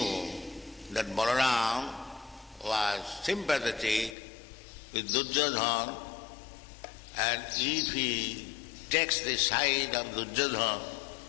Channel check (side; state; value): right; drops out; at 4.2 s